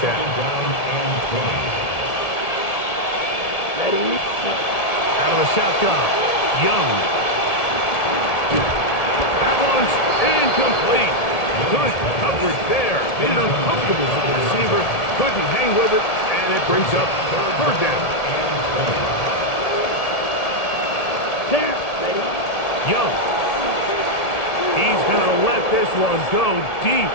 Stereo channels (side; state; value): right; late; 1.7 ms